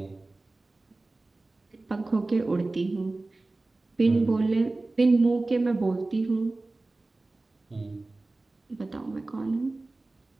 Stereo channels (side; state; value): left; quieter; 3.1 dB